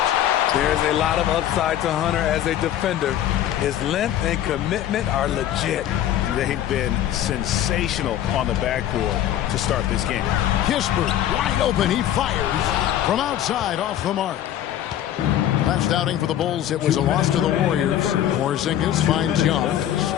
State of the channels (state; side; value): quieter; right; 11.5 dB